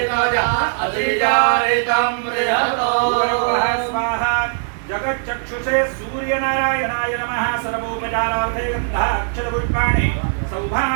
स्वाहा जगच्चक्षुषे सूर्य सूर्यनारायणाय नमः सर्वोपचारार्थे गन्धाक्षरपुष्पाणि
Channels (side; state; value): left; silent; digital silence